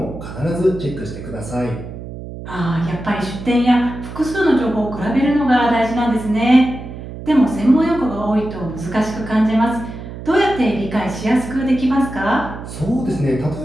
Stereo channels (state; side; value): noise; right; hum, 11 dB below the sound